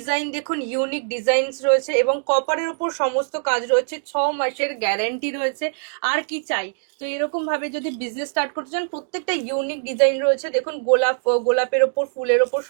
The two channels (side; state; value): left; silent; digital silence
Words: দেখুন ইউনিক ডিজাইনস রয়েছে এবং কপারের উপর সমস্ত কাজ রয়েছে। 6 মাসের গ্যারান্টি রয়েছে। আর কি চাই? তো এরকম ভাবে যদি বিজনেস স্টার্ট করতে চান, প্রত্যেকটা ইউনিক ডিজাইন রয়েছে। দেখুন গোলাপের ওপর, ফুলের ওপর